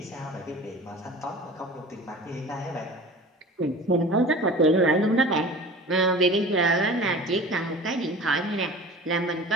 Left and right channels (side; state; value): both; normal; correlation 0.40